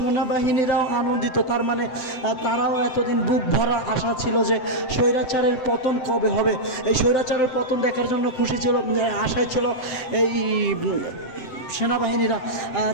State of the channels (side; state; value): right; late; 7.8 ms